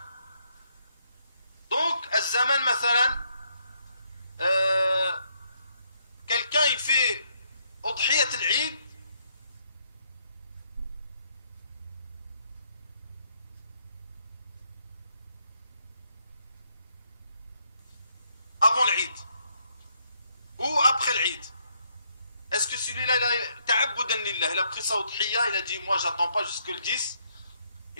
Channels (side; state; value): both; inverted; correlation -0.73